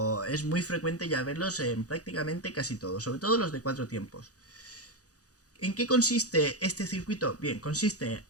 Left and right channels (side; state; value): right; late; 0.67 ms